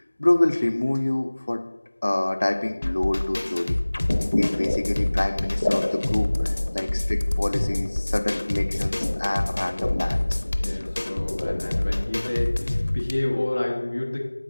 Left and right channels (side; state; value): both; inverted; correlation -1.00